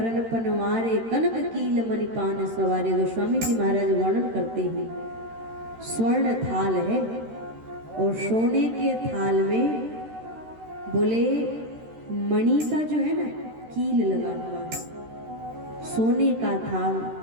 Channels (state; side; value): late; left; 13 ms